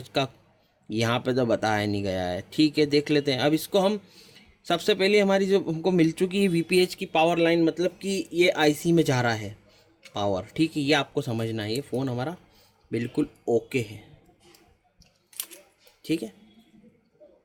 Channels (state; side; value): identical; both; correlation 1.00